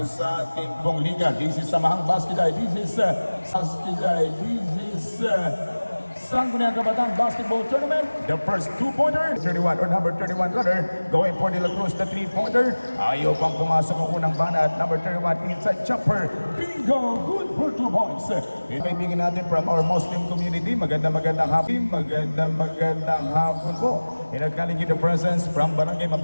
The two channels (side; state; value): both; inverted; correlation -1.00